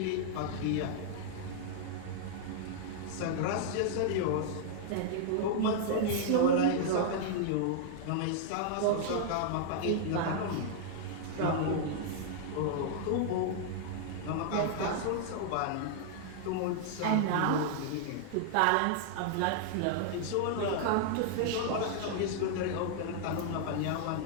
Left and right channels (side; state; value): both; different; correlation -0.01